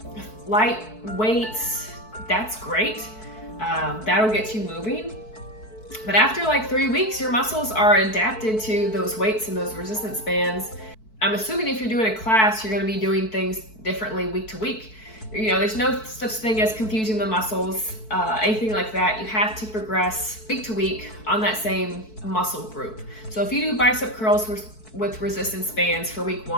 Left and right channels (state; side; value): late; right; 4.6 ms